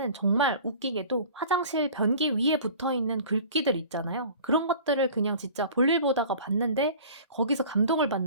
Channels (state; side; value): inverted; both; correlation -0.43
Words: 정말 웃기게도 화장실 변기 위에 붙어 있는 글귀들 있잖아요. 그런 것들을 그냥 진짜 볼일 보다가 봤는데 거기서 감동을